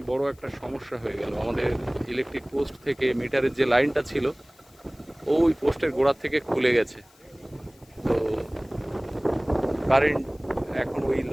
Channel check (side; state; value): left; noise; hiss, 29 dB below the sound